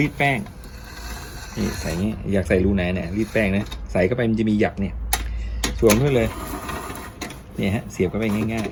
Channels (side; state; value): both; identical; correlation 1.00